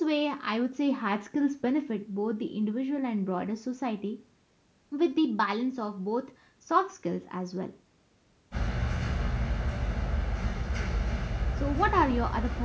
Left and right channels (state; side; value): identical; both; correlation 1.00